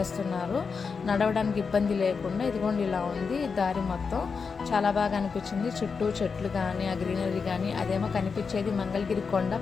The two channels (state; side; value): quieter; right; 5.3 dB